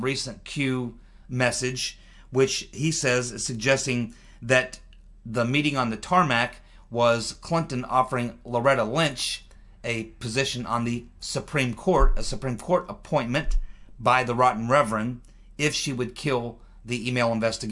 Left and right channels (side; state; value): both; identical; correlation 1.00